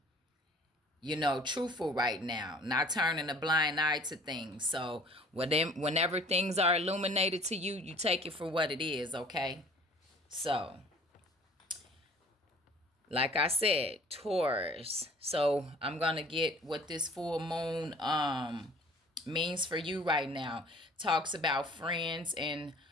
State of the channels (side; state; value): both; normal; correlation 0.51